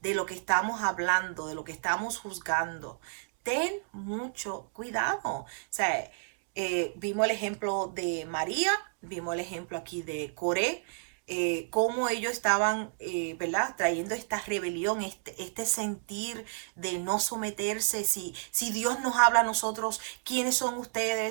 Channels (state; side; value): silent; left; digital silence